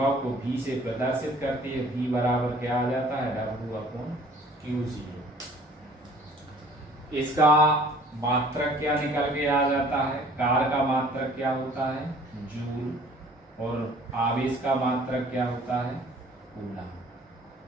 को V से प्रदर्शित करते हैं। V बराबर क्या आ जाता है? W/Q0। इसका मात्रक क्या निकल के आ जाता है? कार्य का मात्रक क्या होता है? जूल। और आवेश का मात्रक क्या होता है? कूलम।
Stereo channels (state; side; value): normal; both; correlation 0.53